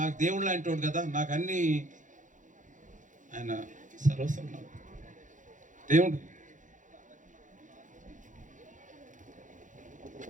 దేవుడు లాంటి వాడు కదా, నాకు అన్ని ఆయన సర్వస్వం దేవుడు.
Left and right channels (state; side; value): late; left; 0.37 ms